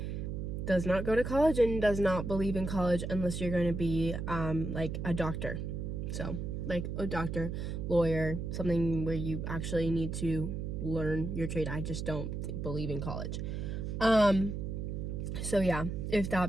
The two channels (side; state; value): right; noise; hum, 4 dB below the sound